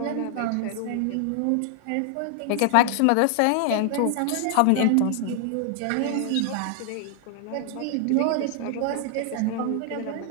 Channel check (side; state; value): both; different; correlation 0.00